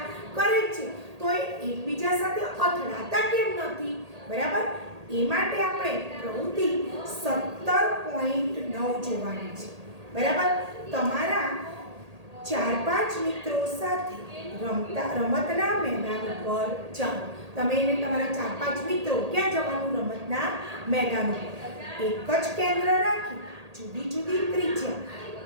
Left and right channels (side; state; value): left; late; 1.8 ms